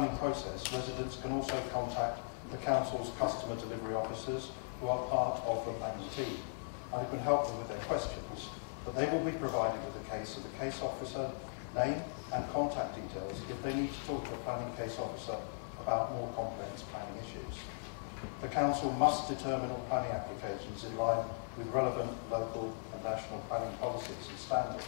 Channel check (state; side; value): silent; right; digital silence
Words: process, residents can also contact the Council's customer delivery officers, who are part of the planning team, and who can help them with their questions, but they will be provided with the case of the case officer, name and contact details if they need to talk to a planning case officer about more complex planning issues. The Council must determine all planning applications in line with relevant local and national planning policies and